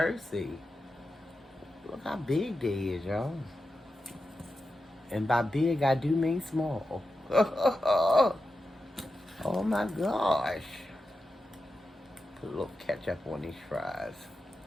Look how big they is, y'all. And by big, I do mean small. Oh my gosh. Put a little ketchup on these fries.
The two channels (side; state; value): both; normal; correlation 0.90